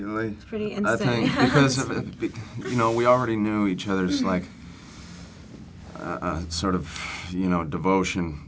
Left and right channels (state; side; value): identical; both; correlation 1.00